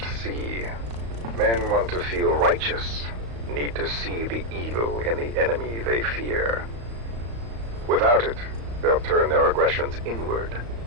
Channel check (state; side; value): late; left; 35 ms